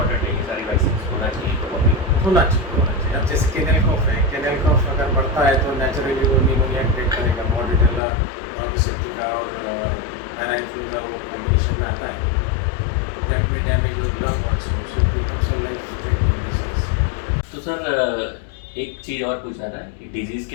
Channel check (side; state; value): right; drops out; at 8.0 s